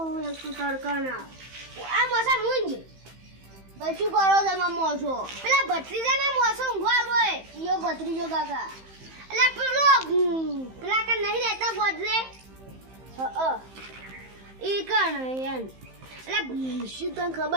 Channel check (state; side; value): late; left; 15 ms